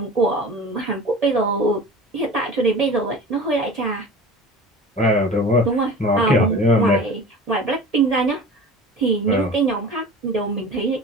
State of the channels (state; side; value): normal; both; correlation 0.38